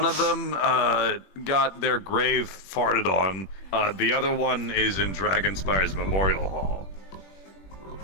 of them got their grave farted on. The other one is in Dragonspire's Memorial Hall.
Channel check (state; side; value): late; right; 21 ms